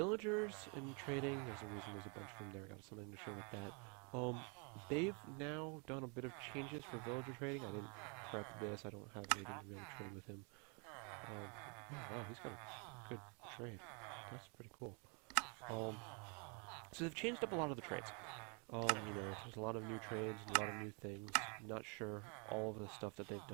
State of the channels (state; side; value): quieter; left; 35.7 dB